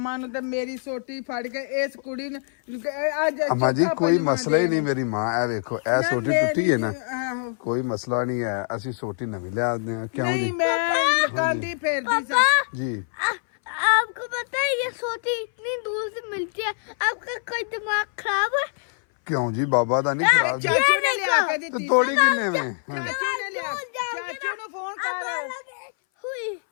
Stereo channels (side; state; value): right; silent; 59 dB below the other